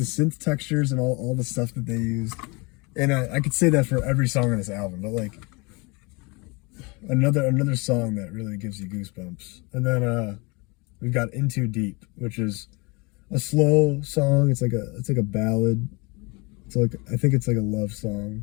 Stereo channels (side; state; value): right; quieter; 27.9 dB